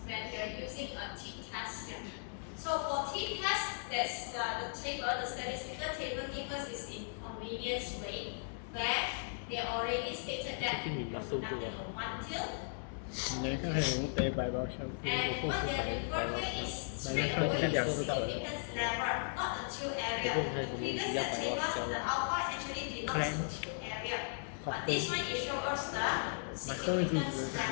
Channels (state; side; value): silent; right; digital silence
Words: when you're using a T test here. So for T test, there's the table, the statistical table gives us this in convenience way where they already stated that you're conducting a one tilt. 你来看看有没有背白包消息， And 我 what 后 they 是 are 白 referring 包 here is 消 straight 来看 away 看 the 两知道了。 significance level, not the tilt area. Previous table, the alpha actually denotes the tilt area. But this one it shows us the significance